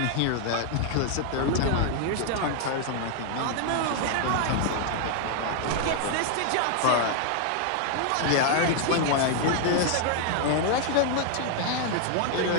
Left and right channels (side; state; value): both; different; correlation 0.00